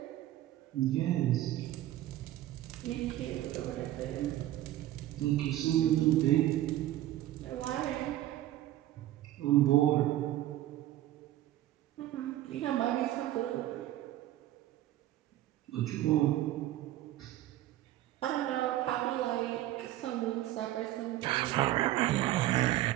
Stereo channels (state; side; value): quieter; left; 14.3 dB